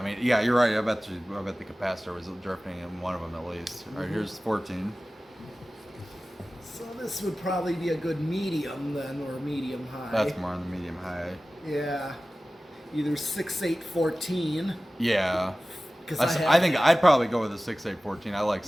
mean, yeah, you're right. I bet the capacitor was drifting in one of them at least. All right, here's 14. So this would probably be a good medium then, or medium high. That's more on the medium high. Yeah. Either 6, 8, 14. Yeah. Because I think I'd probably go with a 6, 8, 14. I like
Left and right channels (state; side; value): normal; both; correlation 0.96